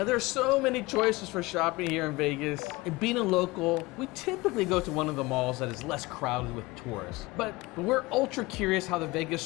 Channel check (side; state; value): right; quieter; 21.9 dB